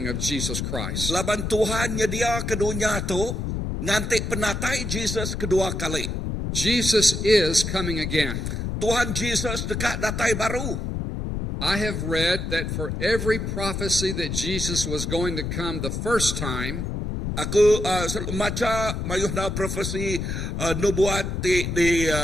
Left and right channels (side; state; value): left; noise; rumble, 3 dB below the sound